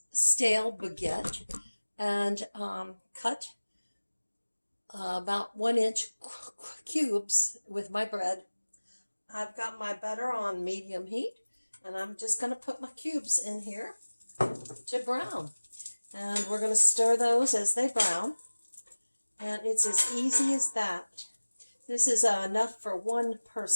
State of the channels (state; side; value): inverted; both; correlation -1.00